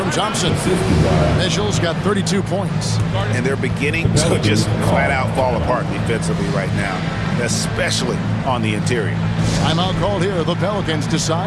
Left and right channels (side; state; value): both; identical; correlation 1.00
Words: Thompson. Mitchell's got 32 points. And they're beginning to just flat out fall apart defensively right now, especially on the interior. Timeout called here. The Pelicans